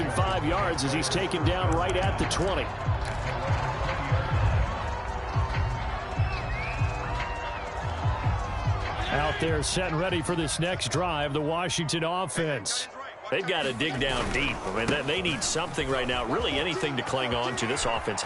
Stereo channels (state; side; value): identical; both; correlation 1.00